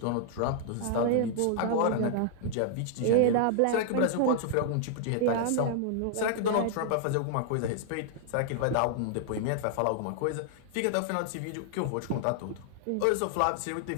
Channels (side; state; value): both; different; correlation -0.01